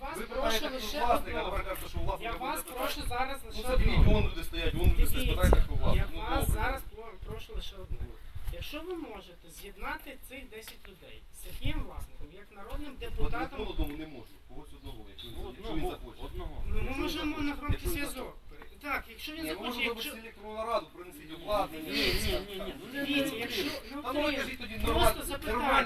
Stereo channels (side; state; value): both; identical; correlation 1.00